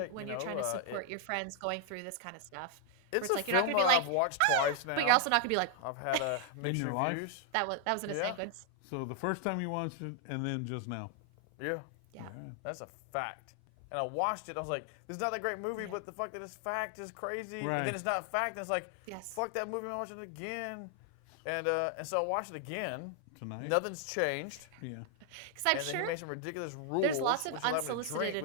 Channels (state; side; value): different; both; correlation 0.00